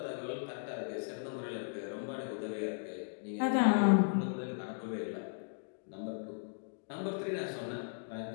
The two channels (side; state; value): right; silent; digital silence